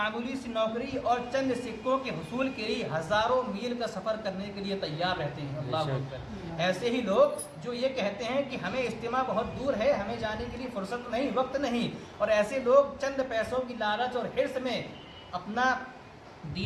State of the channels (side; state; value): both; identical; correlation 1.00